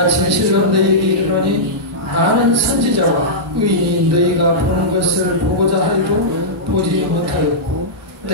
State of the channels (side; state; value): both; normal; correlation -0.14